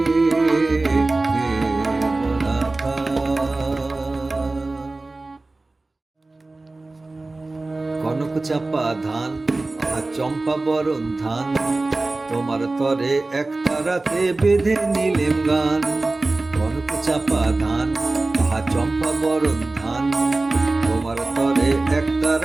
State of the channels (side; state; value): left; quieter; 3.2 dB